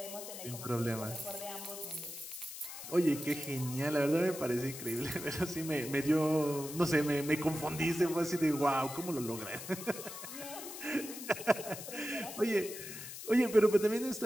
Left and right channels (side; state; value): left; noise; hiss, 10 dB below the sound